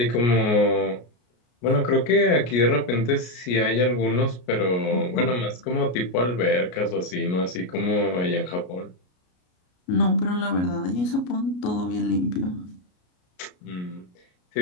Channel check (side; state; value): right; late; 33 ms